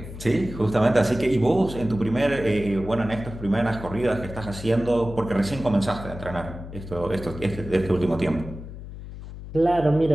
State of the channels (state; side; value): noise; left; hum, 12 dB below the sound